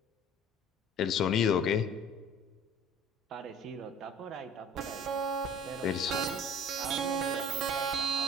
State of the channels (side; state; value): both; normal; correlation 0.46